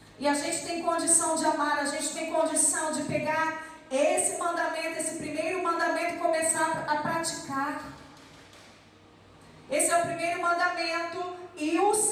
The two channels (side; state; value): both; identical; correlation 1.00